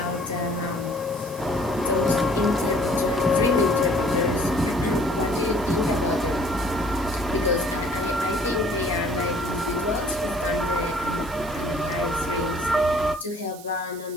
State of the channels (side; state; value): right; noise; hiss, 18 dB below the sound